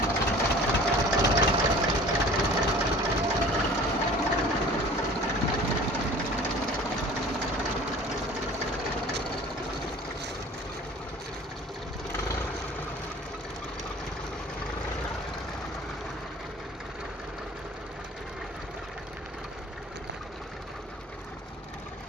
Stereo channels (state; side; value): normal; both; correlation 0.45